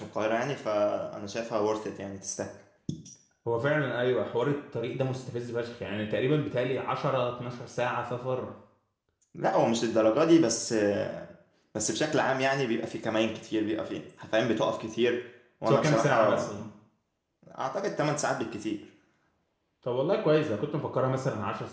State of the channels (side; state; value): both; identical; correlation 1.00